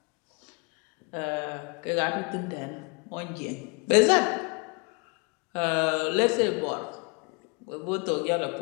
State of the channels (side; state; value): right; quieter; 31.9 dB